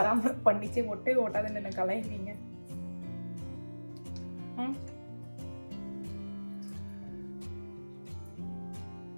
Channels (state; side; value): inverted; both; correlation -1.00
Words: பண்ணிச்சு ஒட்டவே ஒட்டாதுன்னு என்ன கலாய்க்கிறீங்க?